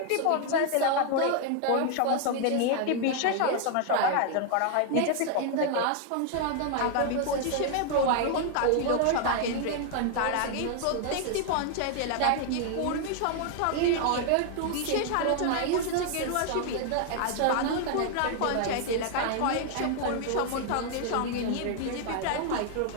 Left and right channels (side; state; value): both; different; correlation 0.00